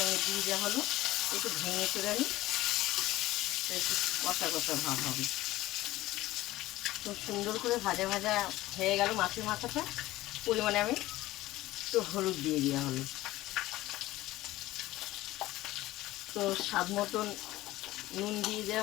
দিয়ে দেওয়া হলো। একটু ভেঙে করে নিই, একটু কষা কষা ভাব হবে। খুব সুন্দর করে ভাজা ভাজা হয়ে গেল মাছের মাথাটা। পরিমাণে আমি একটু হলুদ দিয়ে দেওয়া হলো। তো স্বাদ মতন নুন দিয়ে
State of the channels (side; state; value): right; quieter; 17.0 dB